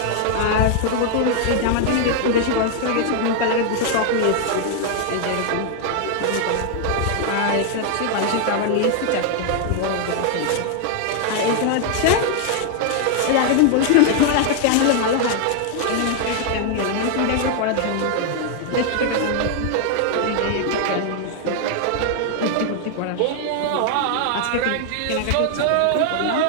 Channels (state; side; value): different; both; correlation 0.00